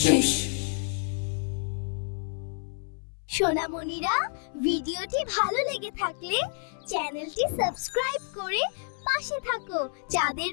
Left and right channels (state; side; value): silent; right; 59 dB below the other